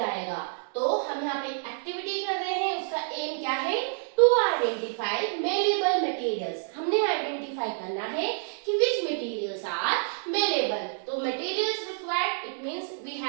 तो हम यहाँ पे एक्टिविटी कर रहे हैं, उसका एम क्या है, टू आइडेंटिफाई मेलेबल मटेरियल्स। हमने आइडेंटिफाई करना है कि विच मटेरियल्स आर मेलेबल। तो materials required, it means we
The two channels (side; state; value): left; silent; 58 dB below the other